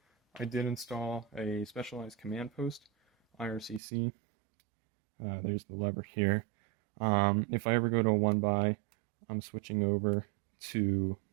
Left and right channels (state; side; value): drops out; left; at 3.8 s